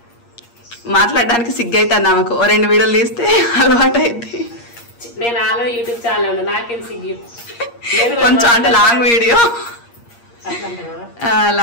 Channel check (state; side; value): late; right; 8.5 ms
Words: మాట్లాడడానికి సిగ్గైతుంది ఆమెకు. ఓ 2 వీడియోలు తీస్తే అలవాటు అయింది. నేను ఆల్రెడీ యూట్యూబ్ ఛానల్ నాకేం సిగ్గు. కొంచెం అంటే లాంగ్